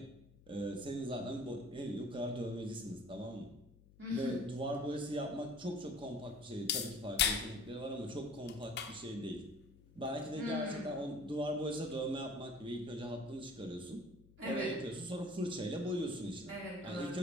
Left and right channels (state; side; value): noise; left; hum, 23 dB below the sound